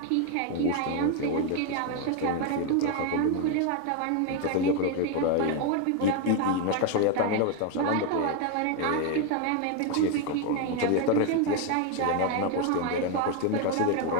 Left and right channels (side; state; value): both; different; correlation 0.01